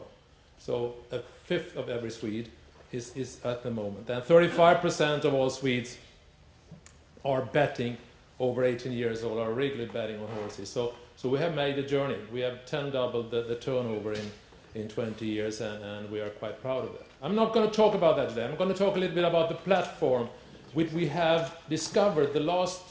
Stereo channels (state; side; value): identical; both; correlation 1.00